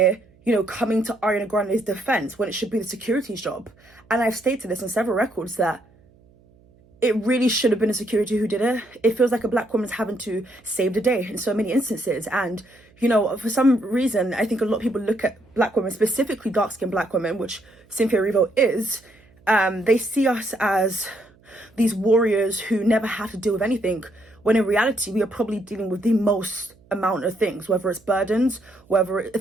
coming to Ariana Grande's defense when it should be the security's job. And I've stated this on several records that it really should have been a security who did it. It feels like a black woman's having to save the day in so many instances. And, for some reason, I think a lot of people look at black women, specifically dark-skinned black women, which Cynthia Erivo is, they see us as these warriors who never have to deal with anything, when in reality, we are probably dealing with the most amount of things, whether it's burdens, whether it's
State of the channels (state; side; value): noise; right; hum, 30 dB below the sound